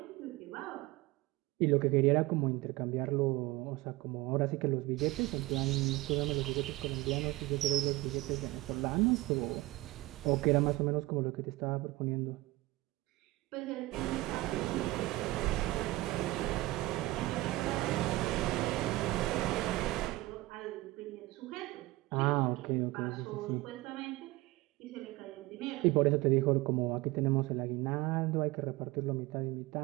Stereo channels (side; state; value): left; quieter; 19.6 dB